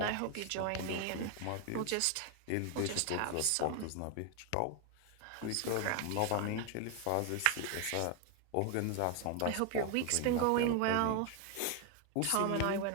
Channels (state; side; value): different; both; correlation 0.01